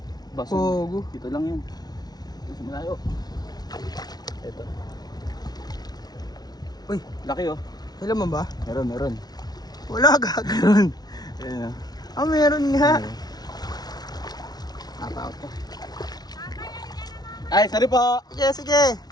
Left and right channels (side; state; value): right; late; 0.19 ms